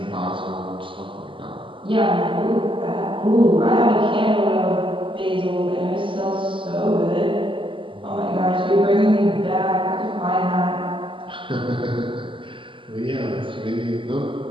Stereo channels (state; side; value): late; left; 0.25 ms